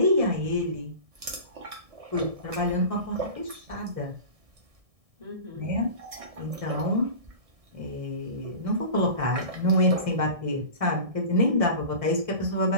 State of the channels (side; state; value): left; late; 1.6 ms